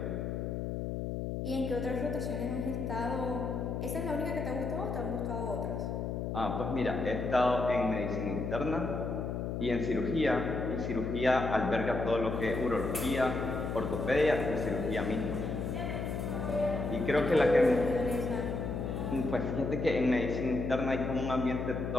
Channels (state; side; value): noise; left; hum, 3 dB below the sound